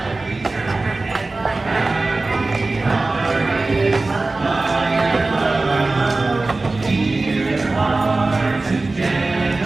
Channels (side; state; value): left; quieter; 3.3 dB